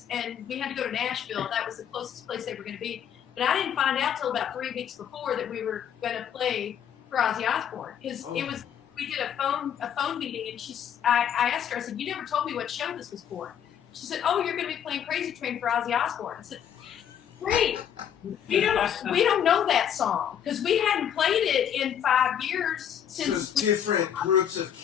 and we had to go to Nashville. That was the closest place they were going to be. But I didn't find out till about 3 weeks before that we were going to play for Ozzy Osbourne, because it was. We did a phone meeting, and I asked her. I said, "You never told me what show this was for." She said, "Oh, you're going to be playing Crazy Train for Ozzy Osbourne." I said, "Great. We don't know that song because we hadn't played it in 5 years since." So it's different groups of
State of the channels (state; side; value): quieter; right; 9.1 dB